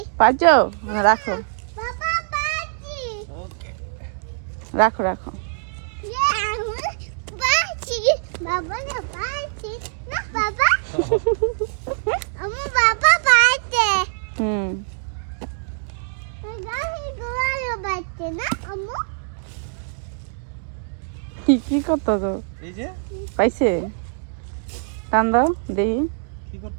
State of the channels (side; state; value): left; silent; digital silence